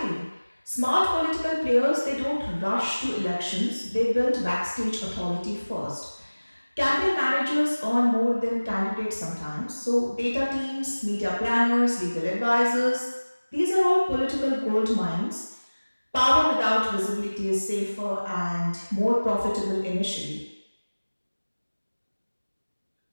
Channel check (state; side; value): inverted; both; correlation -1.00